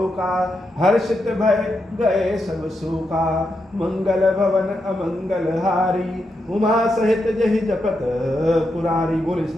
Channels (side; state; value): both; normal; correlation 0.84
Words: हर्षित भय गए सब शोका। मंगल भवन अमंगल हारी उमा सहित जहि जपत पुरारी। बोले